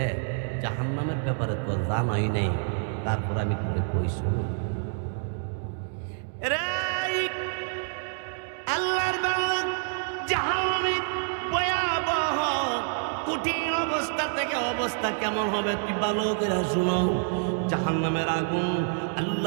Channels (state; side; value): silent; left; 60 dB below the other